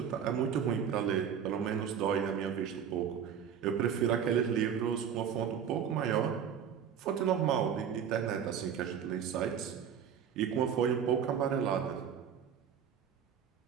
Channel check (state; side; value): quieter; left; 8.1 dB